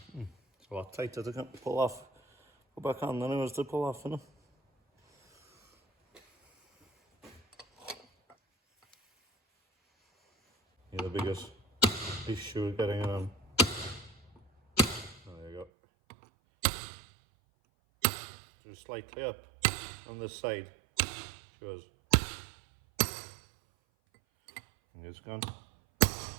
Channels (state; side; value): drops out; left; at 15.7 s